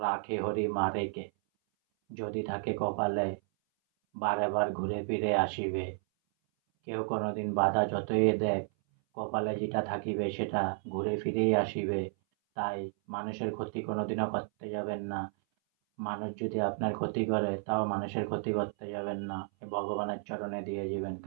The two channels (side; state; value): left; silent; 56 dB below the other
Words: রাখে হরি মারে কে, যদি থাকে কপালে বারে বার ঘুরে ফিরে আসিবে। কেউ কোনোদিন বাধা যতই দেখ, কপালে যেটা থাকিবে সেটা ঘুরে ফিরেই আসিবে। তাই মানুষের ক্ষতি কোনোদিনও করতে যাবেন না। মানুষ যদি আপনার ক্ষতি করে তাও মানুষের ক্ষতি করতে যাবেন না, ভগবানের চরণে দিয়ে যাবেন।